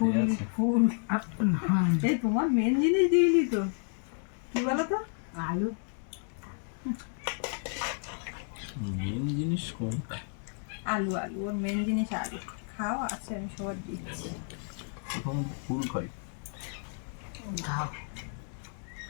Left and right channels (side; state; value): right; silent; 57 dB below the other